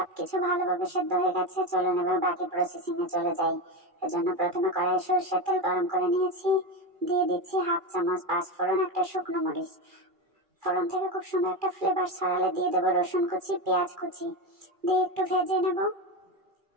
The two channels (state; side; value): late; left; 2.4 ms